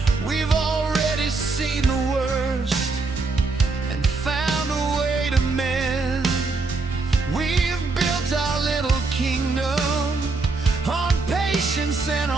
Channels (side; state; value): left; quieter; 3.9 dB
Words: We've already seen the worst and found a way to mend. We've built our little kingdom on patience and